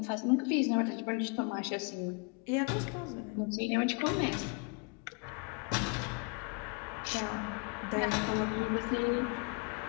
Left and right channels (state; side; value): quieter; right; 33.7 dB